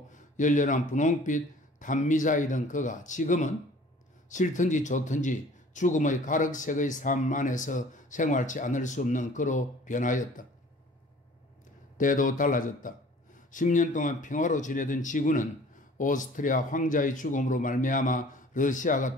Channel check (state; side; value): normal; both; correlation 0.50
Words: 열렬한 분홍빛 단미자이던 그가 지금은 싫든지 좋든지 죽음의 가륵색의 삶 안에서 생활치 않을 수 없는 그로 변하였다. 때도 달라졌다. 10년 동안 평화로 지내던 지구는 오스트리아 황자의 죽음으로 말미암아 러시아가